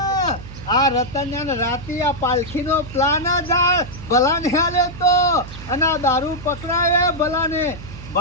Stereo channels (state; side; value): noise; right; hum, 13 dB below the sound